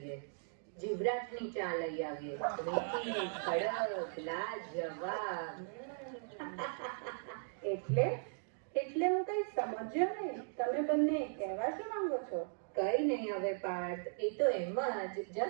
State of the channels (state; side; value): silent; left; digital silence